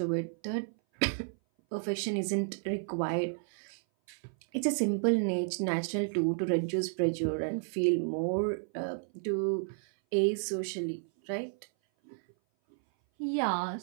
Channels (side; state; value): left; silent; 56 dB below the other